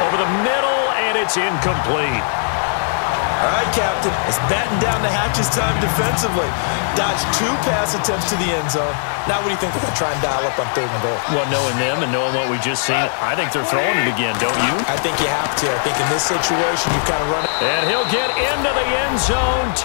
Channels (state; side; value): silent; right; digital silence